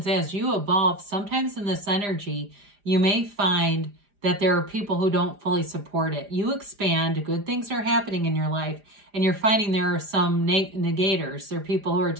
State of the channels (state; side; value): late; left; 4.9 ms